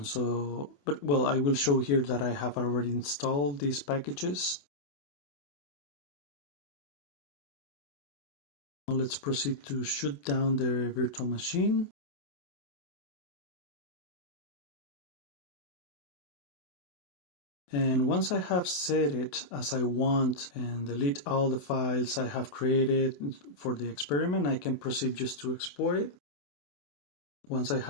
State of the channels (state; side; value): late; right; 28 ms